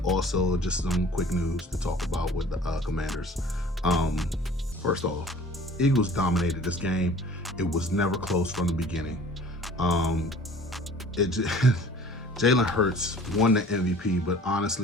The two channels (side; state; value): both; normal; correlation 0.49